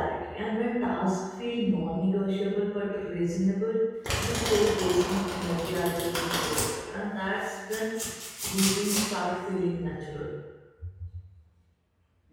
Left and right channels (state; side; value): identical; both; correlation 1.00